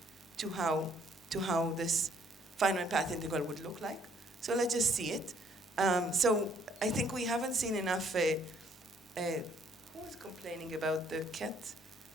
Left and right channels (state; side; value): normal; both; correlation 0.64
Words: to how this finite path integral would look like. So let's just see it. So I think we haven't seen enough. Who was complaining about the cat